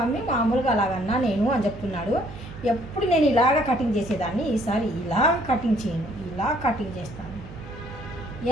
మామూలుగా అలాగన్నా నేను అని చెప్తున్నాడు. ఎప్పుడు నేను ఇలాగ కటింగ్ చేసేదాన్ని, ఈసారి ఇలా కటింగ్ చేయను, ఇలా కటింగ్ చేస్తాను.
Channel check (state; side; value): noise; right; hum, 14 dB below the sound